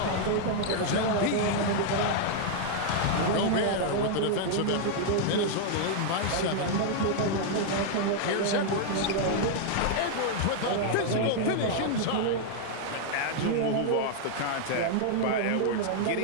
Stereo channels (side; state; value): both; different; correlation -0.01